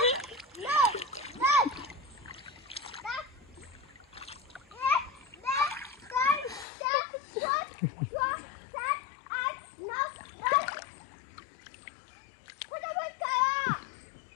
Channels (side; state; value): right; drops out; at 6.7 s